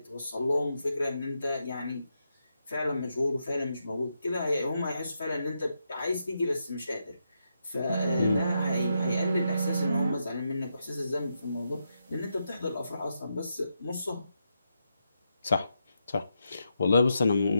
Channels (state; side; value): inverted; both; correlation -0.83